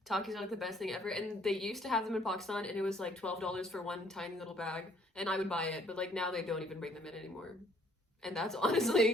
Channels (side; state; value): both; normal; correlation 0.63